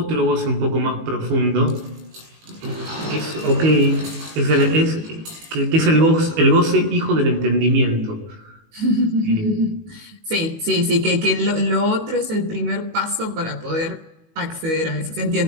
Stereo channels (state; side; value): late; left; 19 ms